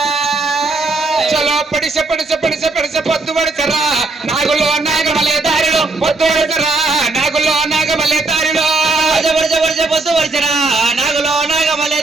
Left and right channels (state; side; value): quieter; left; 3.4 dB